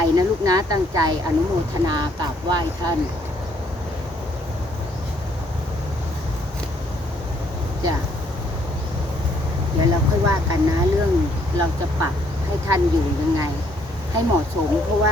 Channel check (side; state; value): both; normal; correlation 0.68